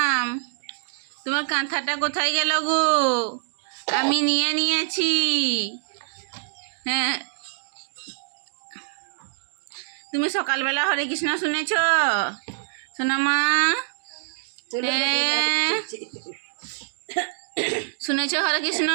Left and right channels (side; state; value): left; silent; digital silence